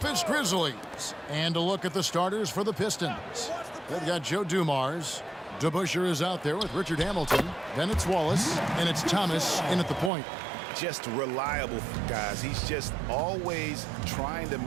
Grizzlies. And a look at the starters for the Pistons. They've got Joe Dumars. DeBusschere is out there with Richard Hamilton. Then it's Wallace, and it's Thomas in at the point. Just reliable, guys. He's just always trying to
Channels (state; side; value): drops out; left; at 10.1 s